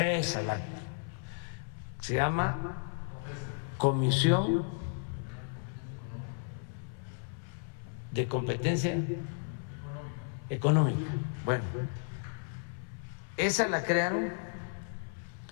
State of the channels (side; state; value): right; silent; 55 dB below the other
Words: la se llama Comisión de Competencia Económica. Bueno, esa la crearon